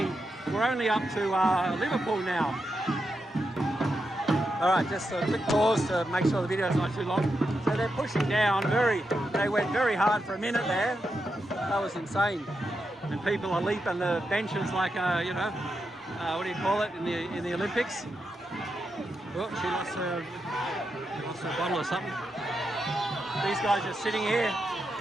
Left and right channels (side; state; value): both; normal; correlation 0.86